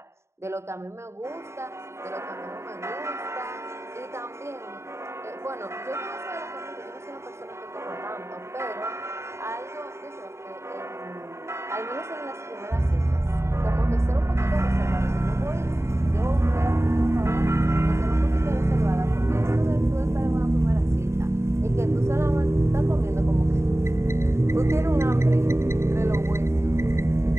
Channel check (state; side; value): late; left; 0.13 ms